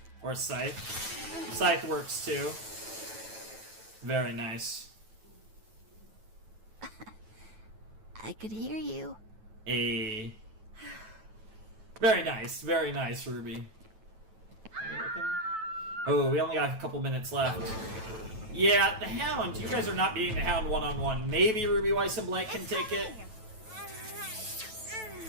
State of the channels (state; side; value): late; left; 9.1 ms